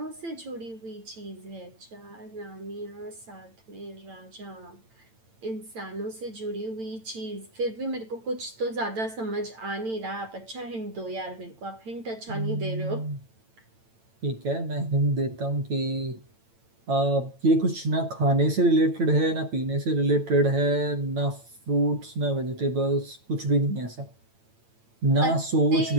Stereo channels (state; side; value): late; left; 8.9 ms